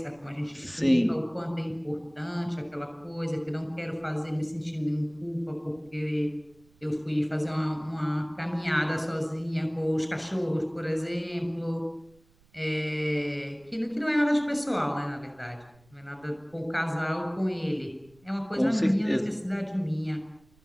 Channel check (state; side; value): noise; right; rumble, 29 dB below the sound